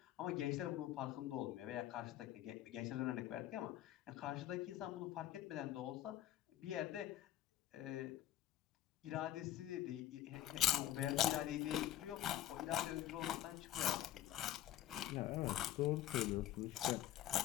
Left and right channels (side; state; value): right; quieter; 12.6 dB